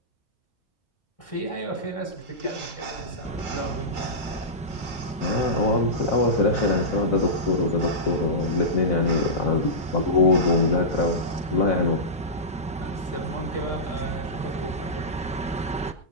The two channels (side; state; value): both; normal; correlation -0.14